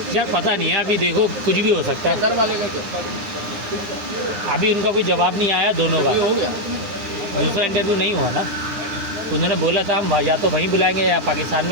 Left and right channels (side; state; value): left; late; 9.7 ms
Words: यार पता नहीं है, अभी देखो कुछ भी हो सकता है। घर वाले का क्या अभी उनका कोई जवाब नहीं आया दोनों का, हो गया? दूसरा इंटरव्यू नहीं हुआ ना, उन्होंने बोला था हम या तो वहीं बुलाएंगे या पाकिस्तान